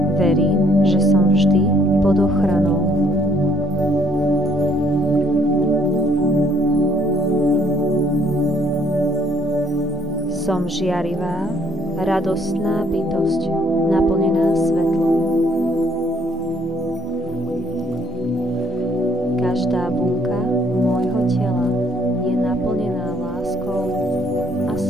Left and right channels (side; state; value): both; normal; correlation 0.64